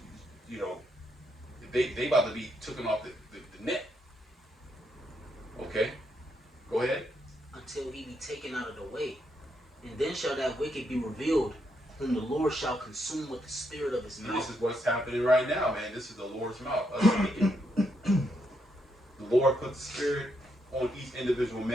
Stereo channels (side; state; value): both; normal; correlation 0.78